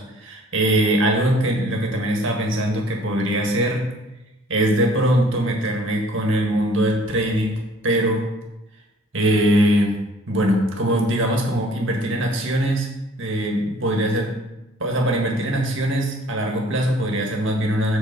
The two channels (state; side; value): normal; both; correlation 0.55